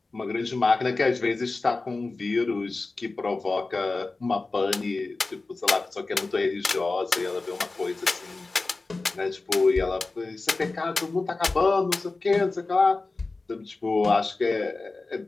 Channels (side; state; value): right; quieter; 3.5 dB